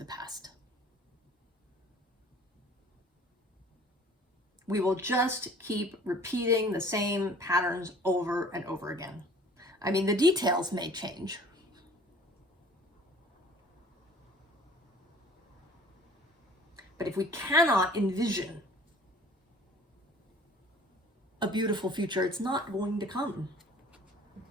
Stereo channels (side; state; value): both; normal; correlation 0.50